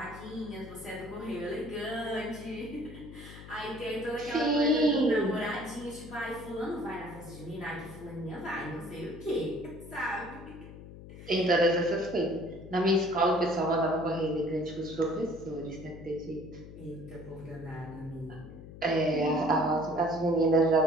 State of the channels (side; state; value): left; noise; hum, 15 dB below the sound